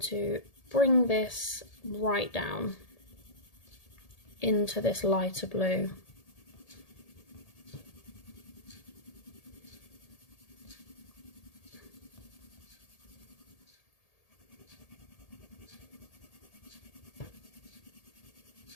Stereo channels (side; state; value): right; late; 1.8 ms